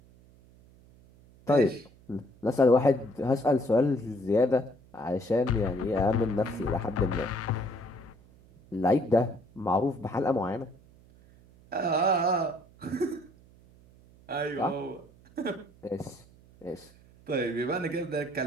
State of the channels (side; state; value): right; noise; hum, 26 dB below the sound